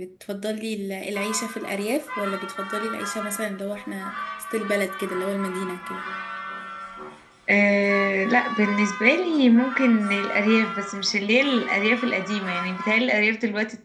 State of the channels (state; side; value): identical; both; correlation 1.00